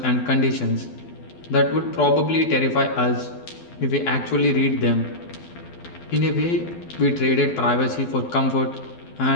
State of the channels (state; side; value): late; right; 12 ms